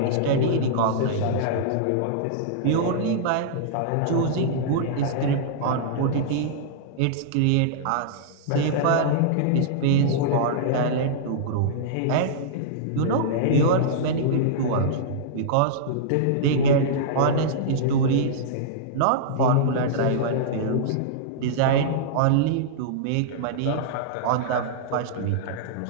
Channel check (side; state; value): both; different; correlation -0.02